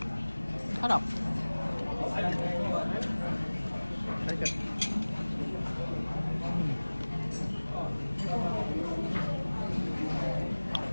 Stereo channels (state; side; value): inverted; both; correlation -1.00